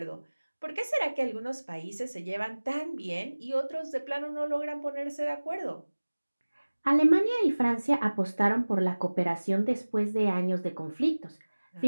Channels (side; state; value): both; inverted; correlation -1.00